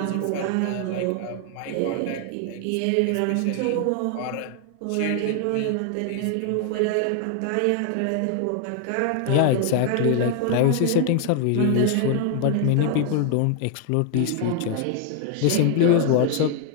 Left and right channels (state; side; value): different; both; correlation 0.00